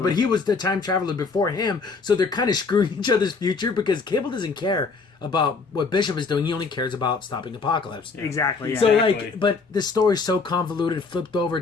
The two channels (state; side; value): quieter; right; 4.5 dB